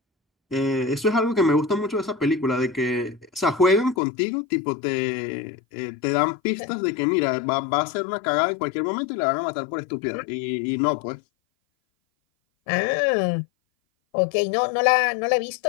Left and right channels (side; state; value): right; drops out; at 4.0 s